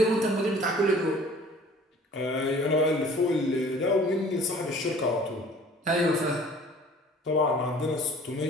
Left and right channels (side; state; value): both; normal; correlation 0.49